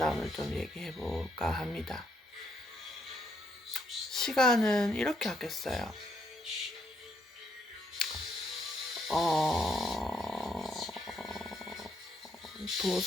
좀 얘기해볼까 합니다. 시간은 이렇게 아꼈어요.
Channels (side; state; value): both; normal; correlation 0.74